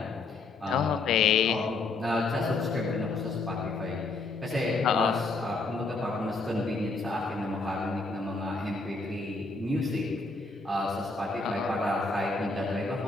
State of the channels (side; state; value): right; quieter; 3.7 dB